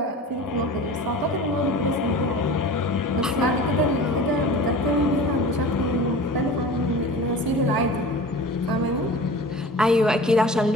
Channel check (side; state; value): both; normal; correlation 0.37